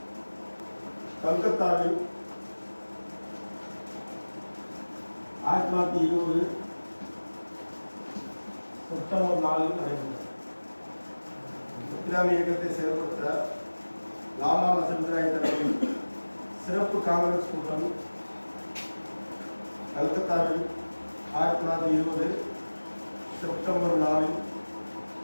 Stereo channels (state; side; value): inverted; both; correlation -1.00